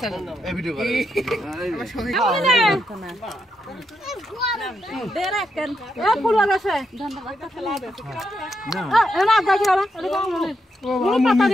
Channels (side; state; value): both; normal; correlation 0.81